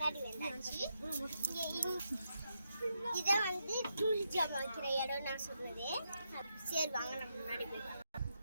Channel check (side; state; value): both; inverted; correlation -0.82